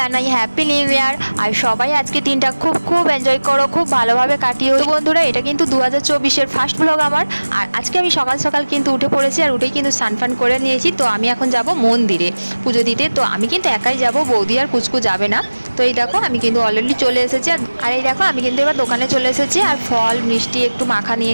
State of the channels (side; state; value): both; inverted; correlation -1.00